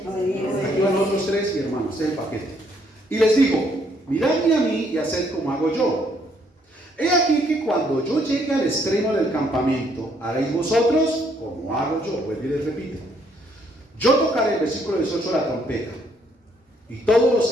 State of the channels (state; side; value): normal; both; correlation 0.69